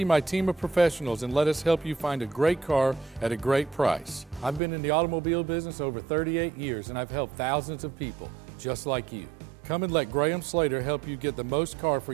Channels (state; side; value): drops out; left; at 4.6 s